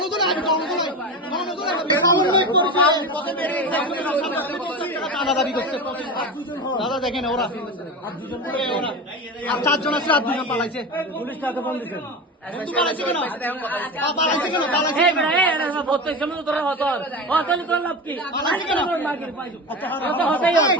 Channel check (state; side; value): normal; both; correlation 0.25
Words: চাঁদা দাবি করছে দাদা, দেখেন ওরা আর 4 জন আছে, আর 2 জন পালাইছে। পুলিশ তাকে বন্ধ দিচ্ছে। পালাইছে কেন? পালাইছে কেন? পালাইছে কেন? প্রত্যেক সময় তোরা হতর হতলি তোর লাভ কি? পালাইছে কেন? আচ্ছা হতেই হবে।